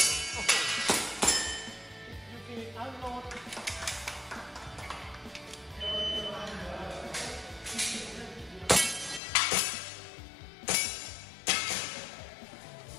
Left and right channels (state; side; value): drops out; right; at 9.2 s